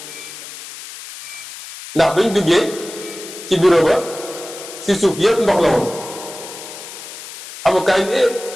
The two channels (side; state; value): left; noise; hiss, 13 dB below the sound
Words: ndax bañ duggee ci bureau ba si suuf yépp ndox la woon avocat yi